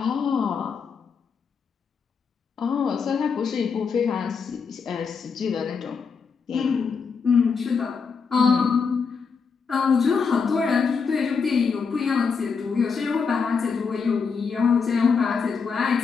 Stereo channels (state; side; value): quieter; right; 5.6 dB